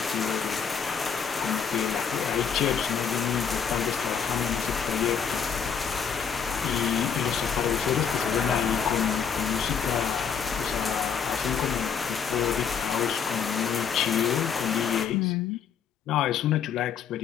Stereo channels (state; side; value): quieter; right; 7.1 dB